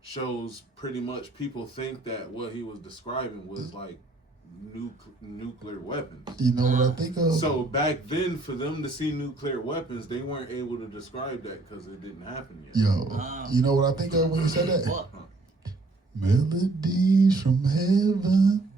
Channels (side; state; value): left; quieter; 3.1 dB